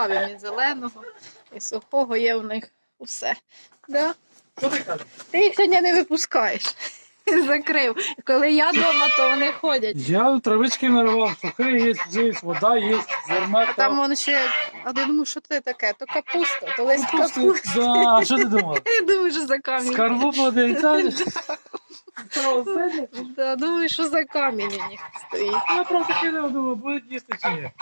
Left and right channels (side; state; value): both; inverted; correlation -1.00